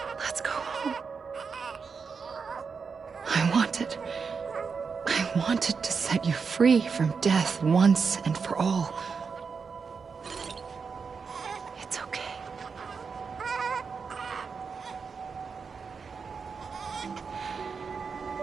Let's go home. I wanted to set you free from death once and for all. It's okay.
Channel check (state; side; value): quieter; left; 5.5 dB